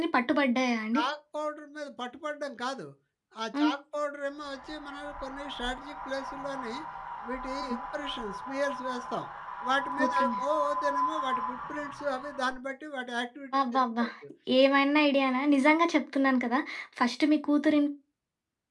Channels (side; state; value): both; identical; correlation 1.00